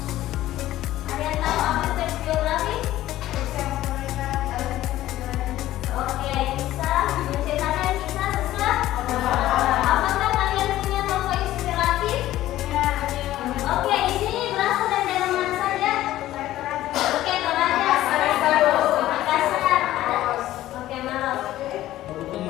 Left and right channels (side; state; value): right; quieter; 14.5 dB